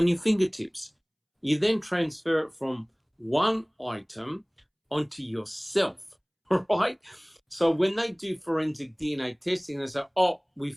your fingertips. You then transfer it from one item onto yourself, right? So when they do forensic DNA testing, they say, oh, we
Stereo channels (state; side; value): identical; both; correlation 1.00